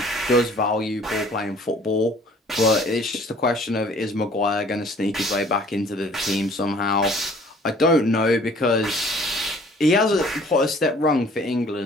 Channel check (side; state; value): both; normal; correlation 0.54